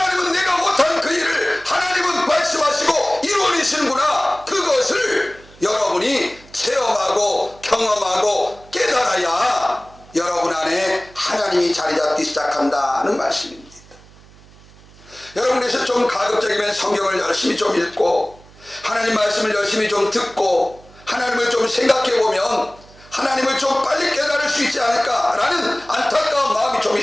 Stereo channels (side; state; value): right; noise; hum, 24 dB below the sound